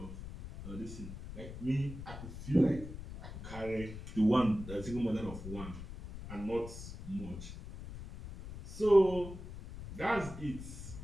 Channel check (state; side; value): noise; left; rumble, 11 dB below the sound